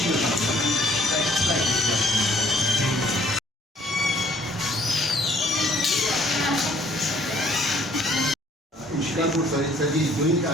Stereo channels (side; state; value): both; normal; correlation 0.61